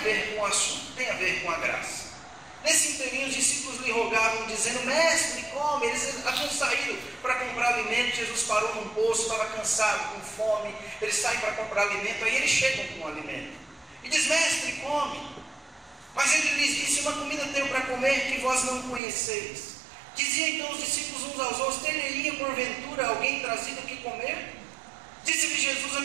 com o assunto, tem a ver com a graça. Nesse inteirinho, os discípulos lhe rogavam, dizendo: Mestre, come. Eles haviam saído para comprar alimento. Jesus parou num poço, estava cansado, com fome. Eles saem para comprar alimento, aí eles chegam com o alimento. E diz: Mestre, come. Mas ele lhes disse: Uma comida tenho para comer que vós não conheceis. Diziam então os discípulos uns aos outros: Teria porventura alguém trazido o que comer? Disse-lhe Jesus: A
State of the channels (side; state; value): left; drops out; at 19.0 s